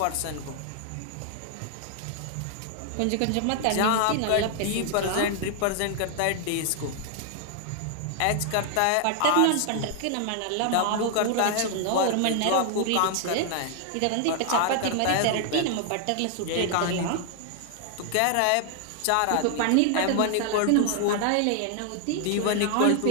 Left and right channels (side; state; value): both; different; correlation 0.00